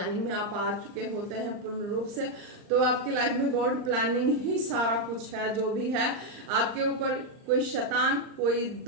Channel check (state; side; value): late; left; 39 ms